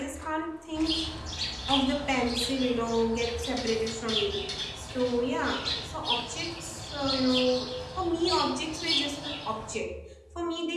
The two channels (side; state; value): both; identical; correlation 1.00